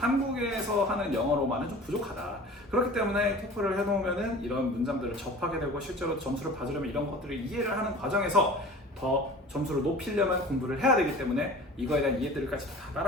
하는 영어로만은 좀 부족하다. 그렇기 때문에 토플을 해놓으면은 이런 문장들을 접하게 되고 실제로 점수를 받으려면 이런 것들을 이해를 하는 과정에서 더 점수를 높이려면 공부를 해야 되기 때문에 이거에 대한 이해들까지 다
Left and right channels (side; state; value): both; normal; correlation 0.41